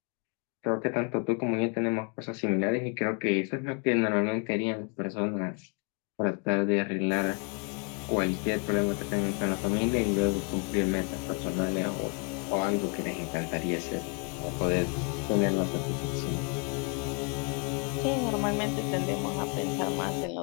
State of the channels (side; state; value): right; quieter; 37.8 dB